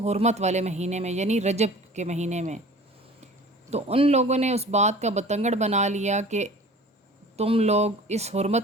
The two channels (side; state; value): both; normal; correlation 0.44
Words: حرمت والے مہینے میں، یعنی رجب کے مہینے میں۔ تو ان لوگوں نے اس بات کا بتنگڑ بنا لیا کہ تم لوگ اس